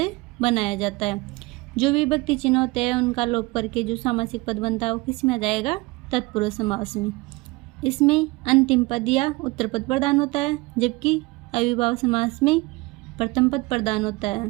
बनाया जाता है। जो विभक्ति चिन्ह होते हैं उनका लोप करके जो सामासिक पद बनता है वो किस में आ जाएगा? तत्पुरुष समास में। इसमें अंतिम पद या उत्तर पद प्रदान होता है, जबकि अव्ययीभाव समास में प्रथम पद प्रदान होता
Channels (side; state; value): left; quieter; 23.1 dB